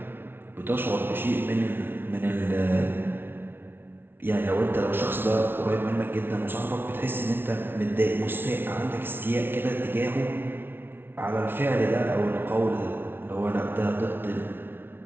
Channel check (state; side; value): late; left; 0.11 ms